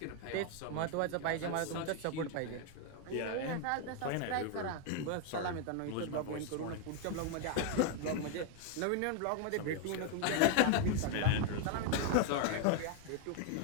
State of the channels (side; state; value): both; different; correlation 0.00